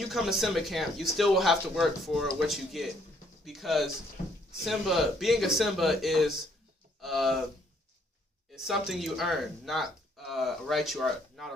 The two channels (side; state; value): both; normal; correlation 0.67